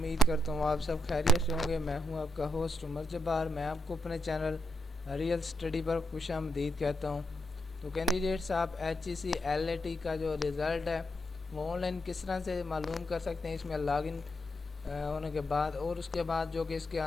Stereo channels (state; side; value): normal; both; correlation 0.79